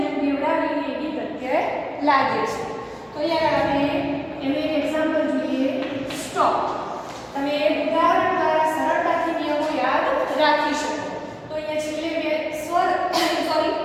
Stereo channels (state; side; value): identical; both; correlation 1.00